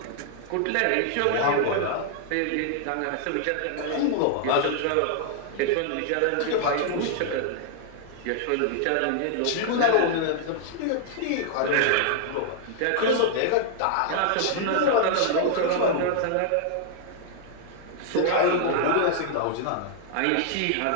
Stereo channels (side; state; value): both; different; correlation -0.01